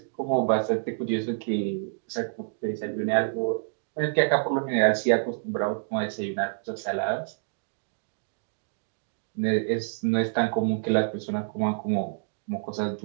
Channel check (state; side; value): silent; left; digital silence